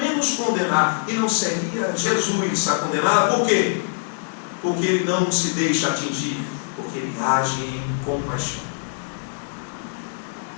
condenar. E não seria Jesus a condená-la. Por quê? Porque ele não se deixa atingir, porque ele age em compaixão.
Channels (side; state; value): right; silent; digital silence